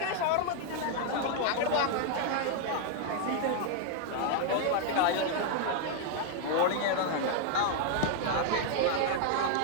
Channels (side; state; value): both; different; correlation 0.00